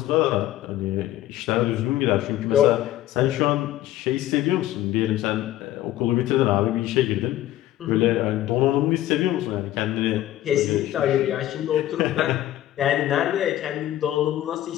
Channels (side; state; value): right; quieter; 13.9 dB